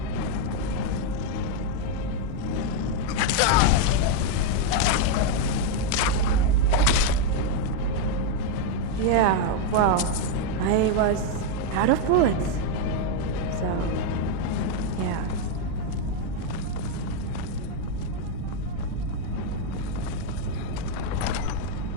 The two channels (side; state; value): both; different; correlation 0.01